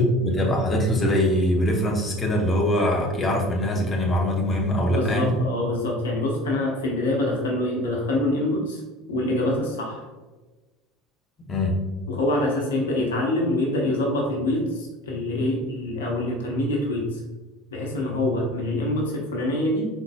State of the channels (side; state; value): both; normal; correlation 0.42